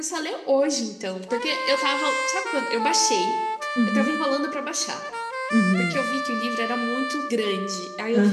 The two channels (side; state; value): both; identical; correlation 1.00